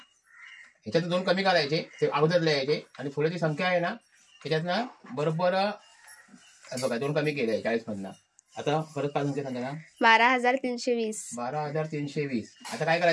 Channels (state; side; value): identical; both; correlation 1.00